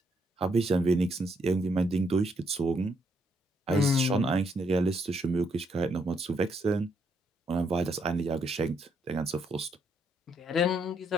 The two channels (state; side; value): normal; both; correlation 0.74